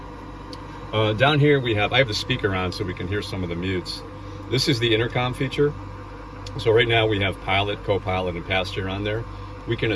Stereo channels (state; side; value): identical; both; correlation 1.00